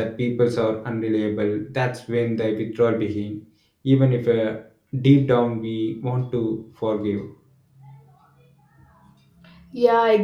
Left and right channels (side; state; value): both; identical; correlation 1.00